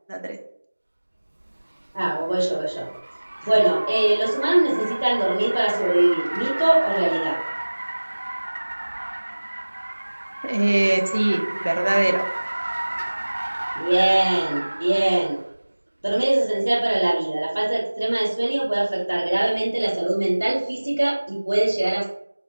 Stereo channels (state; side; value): inverted; both; correlation -1.00